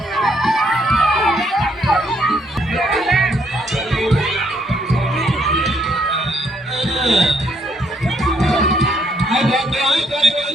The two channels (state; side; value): normal; both; correlation 0.70